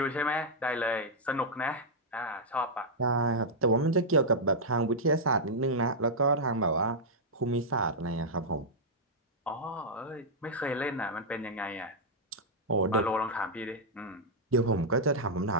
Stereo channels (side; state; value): both; normal; correlation -0.06